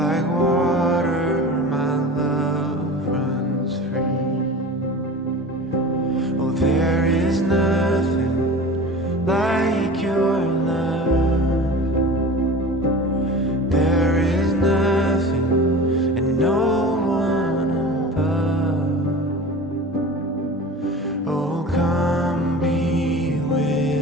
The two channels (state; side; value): normal; both; correlation 0.36